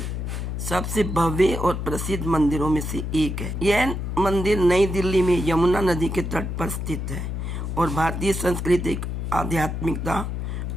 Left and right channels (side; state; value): left; noise; hum, 3 dB below the sound